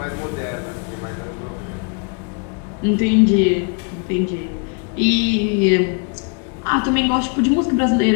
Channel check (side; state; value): right; quieter; 37.4 dB